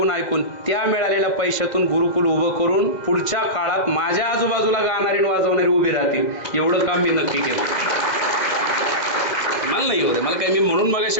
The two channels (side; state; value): right; late; 2.0 ms